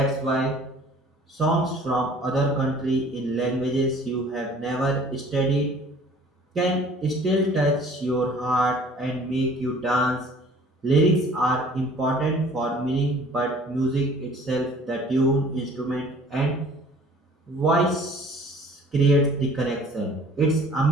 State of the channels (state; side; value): normal; both; correlation 0.51